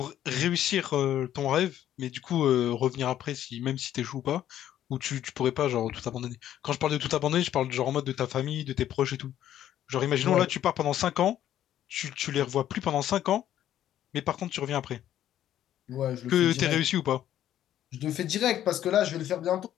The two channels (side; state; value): right; quieter; 11.6 dB